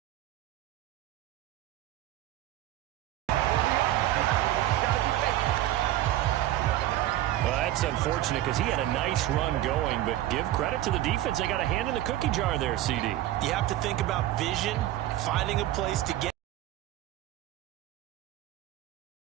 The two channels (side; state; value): left; quieter; 14.2 dB